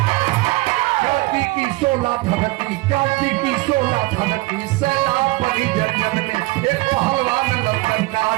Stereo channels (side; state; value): left; quieter; 21.7 dB